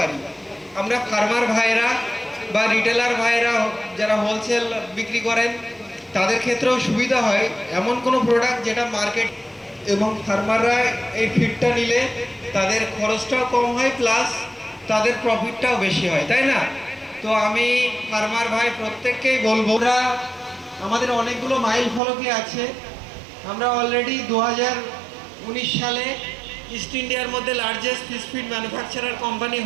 আমরা ফার্মার ভাইরা বা রিটেলার ভাইরা যারা হোলসেল বিক্রি করেন তাদের ক্ষেত্রেও সুবিধা হয় এমন কোনো প্রোডাক্ট যেটা মার্কেট, এবং ফার্মাররা এই ফিডটা নিলে তাদের খরচটাও কম হয় প্লাস তাদের প্রফিটটাও বেশি হয়, তাই না? তো আমি ফার্মার ভাই প্রত্যেককেই বলবো, আমাদের অনেকগুলো মাইল ফলকে আছে। আমরা অলরেডি 2019 সালে ইস্ট ইন্ডিয়ার মধ্যে largest fish feed manufacturer company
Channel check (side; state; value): left; drops out; at 22.0 s